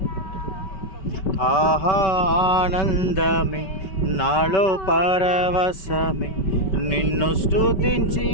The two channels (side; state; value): right; late; 5.2 ms